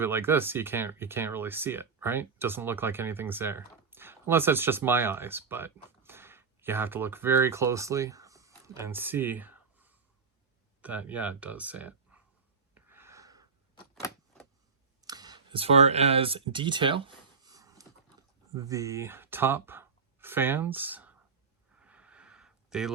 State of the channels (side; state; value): left; quieter; 5.2 dB